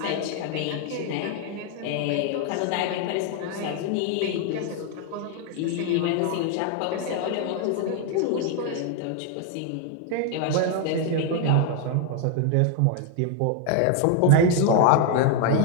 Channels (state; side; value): different; both; correlation 0.00